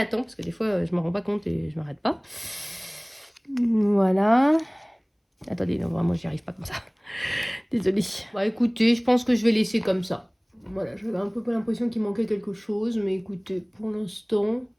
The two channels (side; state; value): both; identical; correlation 1.00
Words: temps parce que des fois, je ne me rends pas compte et je ne m'arrête pas. Voilà. Attendez, non, vraiment, j'y arrive pas comme ça. Désolée. Bah écoutez, je pense que je vais laisser comme ça. Voilà, j'avais un peu l'impression qu'il manquait quelque chose, mais écoutez, pour l'instant,